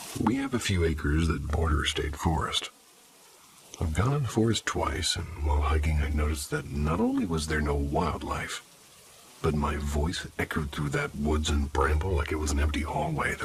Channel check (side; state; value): both; identical; correlation 1.00